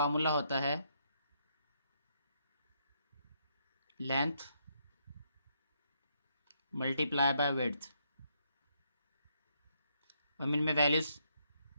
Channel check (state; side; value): inverted; both; correlation -0.76